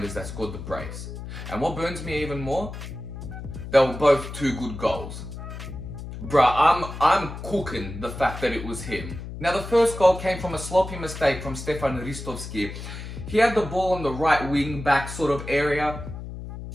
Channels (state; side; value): noise; left; hum, 9 dB below the sound